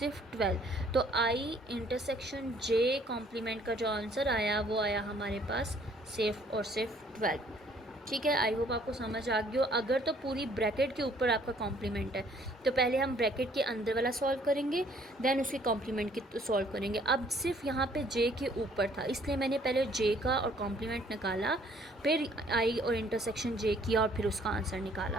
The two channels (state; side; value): normal; both; correlation 0.61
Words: 12। तो आई इंटरसेक्शन जे कॉम्प्लीमेंट का जो आंसर आया वो आया हमारे पास सिर्फ और सिर्फ 12, ठीक है। आई होप आपको समझ आ गया हो। अगर तो पूरी ब्रैकेट के ऊपर आपका कॉम्प्लीमेंट है तो पहले हम ब्रैकेट के अंदर वाला सॉल्व करेंगे, देन उसके कॉम्प्लीमेंट की सॉल्व करेंगे। अब सिर्फ यहाँ पे जे के ऊपर था इसलिए मैंने पहले जे का और कॉम्प्लीमेंट निकाला, फिर आई और इंटरसेक्शन जे किया और फिर उसका आंसर